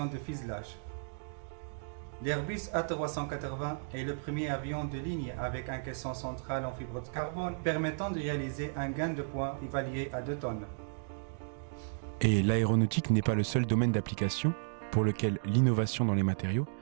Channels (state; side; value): silent; left; digital silence